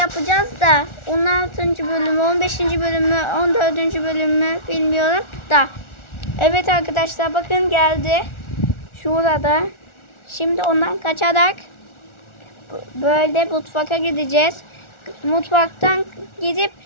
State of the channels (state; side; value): late; right; 1.4 ms